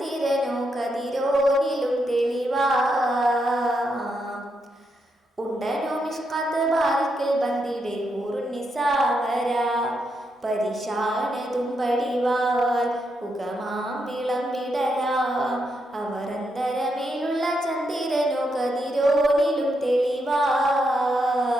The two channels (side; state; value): both; normal; correlation 0.81